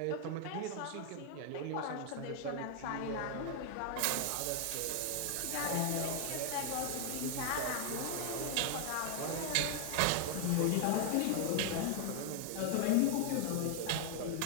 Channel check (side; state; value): both; different; correlation 0.00